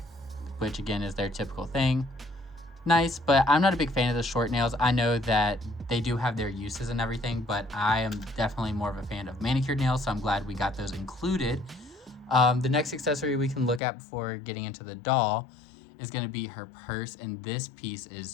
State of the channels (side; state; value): right; drops out; at 13.8 s